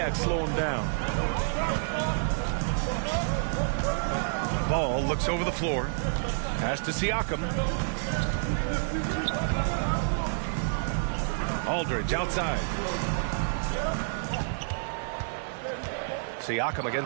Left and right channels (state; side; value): silent; left; digital silence